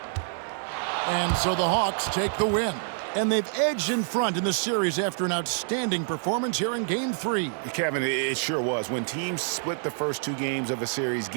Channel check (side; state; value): left; silent; 60 dB below the other